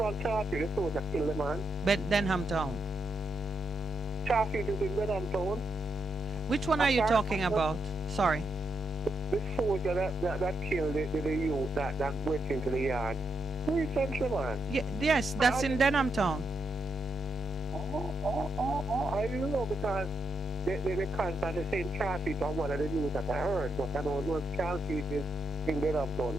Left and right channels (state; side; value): normal; both; correlation 0.81